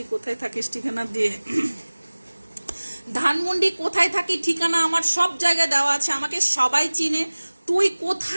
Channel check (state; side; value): inverted; both; correlation -1.00